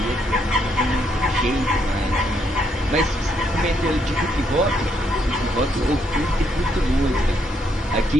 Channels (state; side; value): normal; both; correlation 0.74